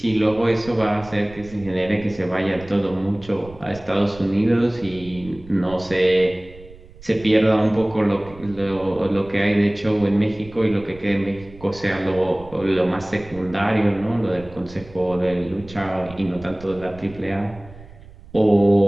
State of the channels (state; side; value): noise; right; rumble, 19 dB below the sound